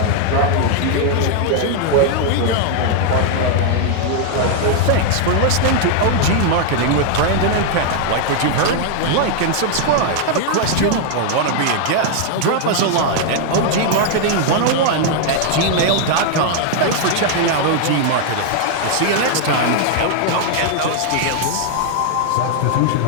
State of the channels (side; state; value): both; different; correlation 0.00